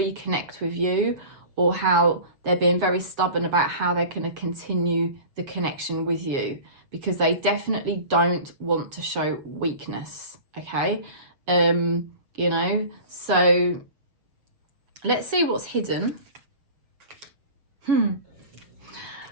with you, or how they're being very stubborn about how they're going to continue the connection with you, because they definitely don't want to show weakness, okay? You know, so let's see what's hidden.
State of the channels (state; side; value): late; left; 7.2 ms